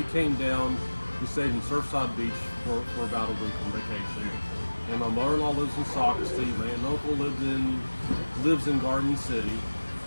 came down, we stayed in Surfside Beach for about a week on vacation. And my mother-in-law lives in Socastee. My aunt and uncle lives in Garden City.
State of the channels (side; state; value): both; inverted; correlation -1.00